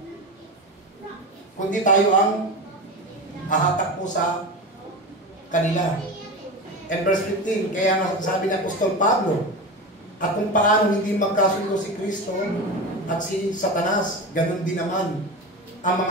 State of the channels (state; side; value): normal; both; correlation 0.25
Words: Kundi tayo ang hahatak po sa kanila. And verse 15, kaya nga sabi ng Apostol Pablo, at kung paano hindi magkasundo si Kristo at si Satanas, ganun din naman ang